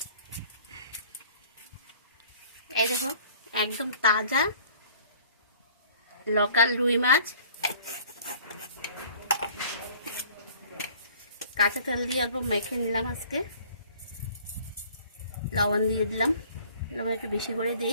এই দেখো একদম তাজা লোকাল রুই মাছ, কাঁচা তেল দিয়ে অল্প মেখে নিলাম। আজকে লবণ দিয়ে দিলাম, লবণ একটু বেশি করে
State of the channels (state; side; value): inverted; both; correlation -0.52